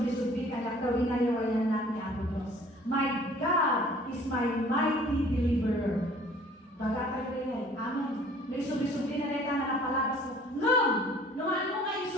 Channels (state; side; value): normal; both; correlation 0.52